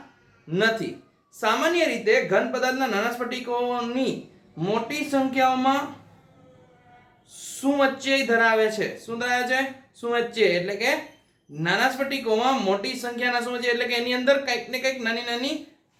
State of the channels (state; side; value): identical; both; correlation 1.00